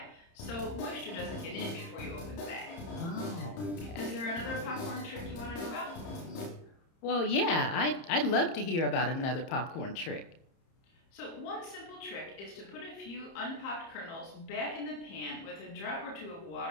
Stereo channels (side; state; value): right; late; 30 ms